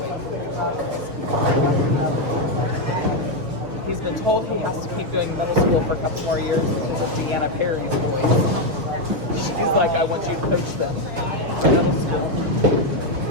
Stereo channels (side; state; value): left; late; 6.5 ms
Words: way through. He's been told he has to keep doing middle school for a couple more years because of Deanna Perry's boys. She's like, I want you to coach them for middle school.